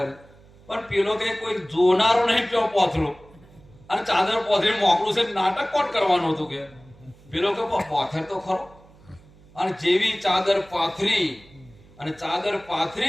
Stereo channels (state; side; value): noise; right; hum, 25 dB below the sound